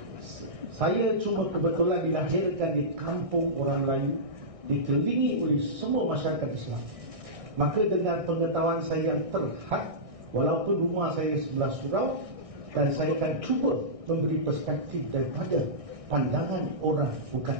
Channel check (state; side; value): late; left; 1.6 ms